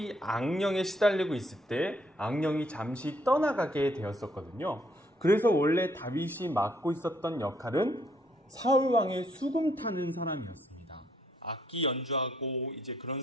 악령에 시달리고 있을 때 악령이 잠시 떠나가게 되었었거든요. 그래서 원래 다윗이 맡고 있었던 역할은 사울 왕의 수금 타는 사람이었습니다. 악기 연주하고 이제 그런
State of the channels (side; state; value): both; normal; correlation 0.69